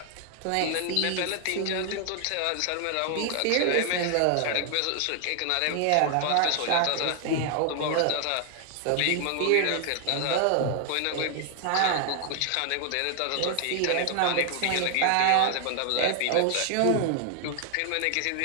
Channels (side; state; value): both; different; correlation 0.00